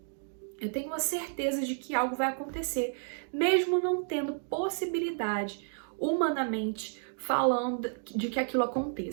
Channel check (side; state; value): left; silent; digital silence